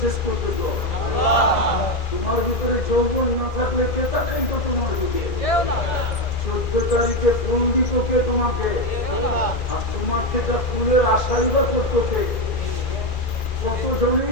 করতেছ? তোমার ভিতরে যৌবন না থাকলে কে তাকাই তো তোমার দিকে? 14 তারিখে ফুল দিত কে তোমাকে? আর তোমার থেকে ফুলের আশাই বা করতো কে? কতজনই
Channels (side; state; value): right; late; 2.4 ms